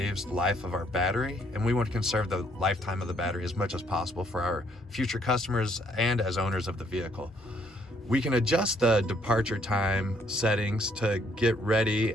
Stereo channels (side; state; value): both; normal; correlation 0.68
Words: life of our battery. And we want to conserve the lifetime of the battery as much as possible for our future customers and as owners of the vehicle. We can adjust the departure time settings to get ready